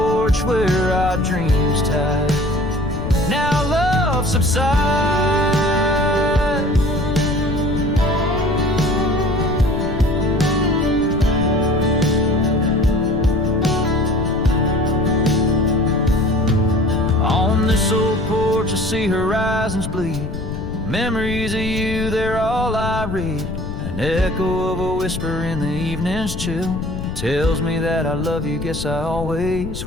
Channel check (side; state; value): left; noise; rumble, 8 dB below the sound